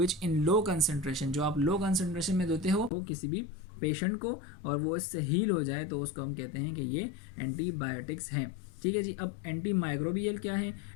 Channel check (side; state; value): right; drops out; at 2.9 s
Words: in low concentration, जो आप लो कंसंट्रेशन में देते हो किसी भी पेशेंट को और वो इससे हील हो जाए, तो उसको हम कहते हैं कि ये एंटीबायोटिक्स हैं। ठीक है जी। अब एंटी माइक्रोबियल क्या है?